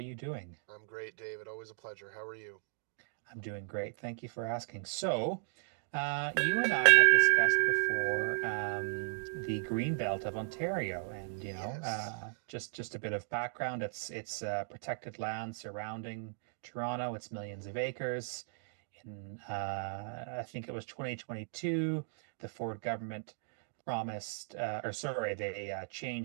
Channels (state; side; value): silent; left; digital silence